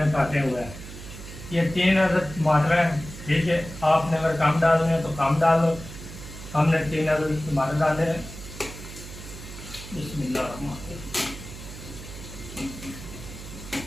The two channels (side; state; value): right; noise; hum, 13 dB below the sound